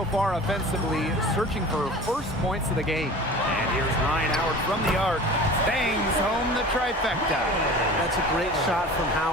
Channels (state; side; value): normal; both; correlation 0.39